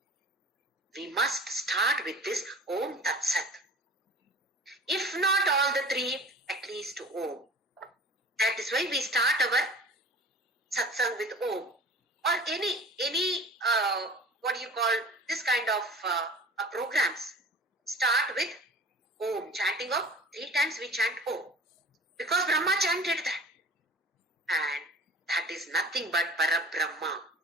we must start with this Om Tat Sat. If not all the three, at least Om. That is why we start our satsang with Om. Or any what do you call this kind of programs. Start with Om. Chanting of 3 times we chant Om. Because Brahma chanted that. And that is nothing but Parabrahma.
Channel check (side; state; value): both; normal; correlation 0.41